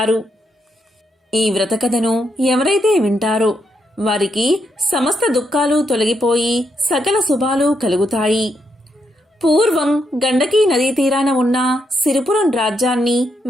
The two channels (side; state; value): both; normal; correlation 0.80